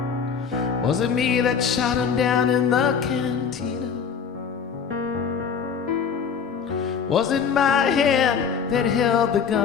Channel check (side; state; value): right; quieter; 6.6 dB